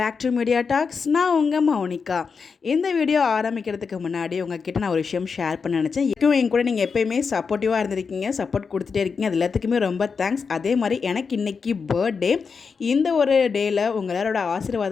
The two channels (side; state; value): right; quieter; 5.4 dB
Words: to media talks. நான் உங்கள் மௌனிகா. இந்த வீடியோ ஆரம்பிக்கிறதுக்கு முன்னாடி உங்ககிட்ட நான் ஒரு விஷயம் ஷேர் பண்ண நினச்சேன். என் கூட நீங்கள் எப்போயுமே சப்போர்ட்டிவாக இருந்திருக்கீங்க, சப்போர்ட் கொடுத்துட்டே இருக்கீங்க. அது எல்லாத்துக்குமே ரொம்ப தேங்க்ஸ். அதே மாதிரி எனக்கு இன்றைக்கி பர்த்டே. இந்த ஒரு டேயில் உங்கள் எல்லாரோட